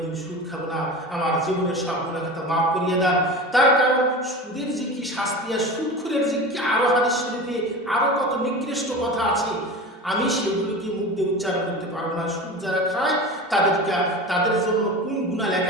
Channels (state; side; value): normal; both; correlation 0.31